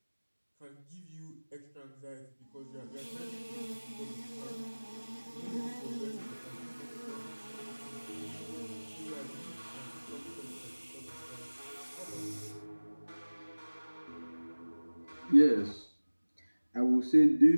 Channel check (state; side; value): inverted; both; correlation -1.00